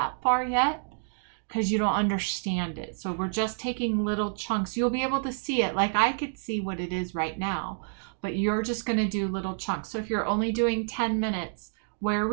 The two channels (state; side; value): silent; left; digital silence